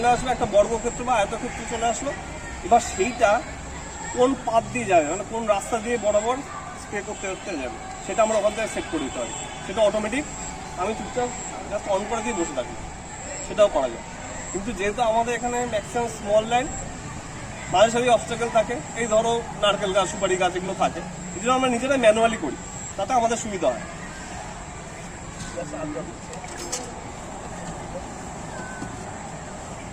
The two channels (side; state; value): both; identical; correlation 1.00